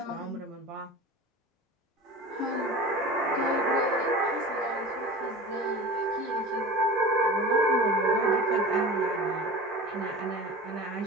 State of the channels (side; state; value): both; normal; correlation 0.35